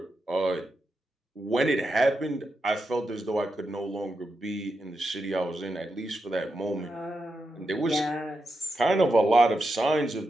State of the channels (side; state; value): both; normal; correlation 0.87